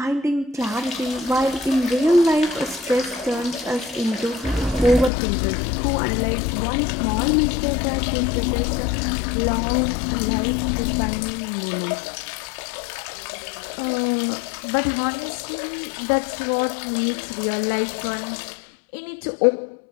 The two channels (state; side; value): drops out; right; at 5.1 s